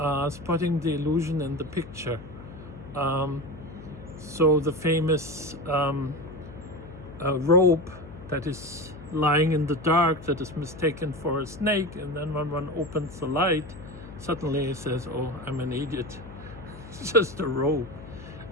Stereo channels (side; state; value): left; noise; hum, 15 dB below the sound